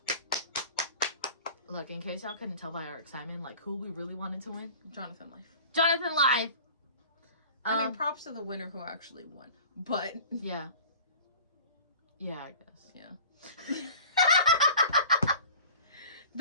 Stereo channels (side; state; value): both; inverted; correlation -0.42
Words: Look, in case y'all couldn't tell by our excitement, like who we really wanted to win. Jonathan Life. Jonathan Live. I mean, props to the winner who actually won. But... Yeah. Yeah, I guess. Yeah.